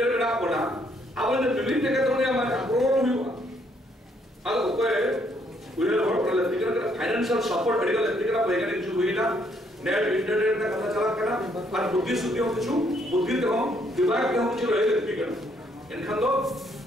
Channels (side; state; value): both; normal; correlation 0.70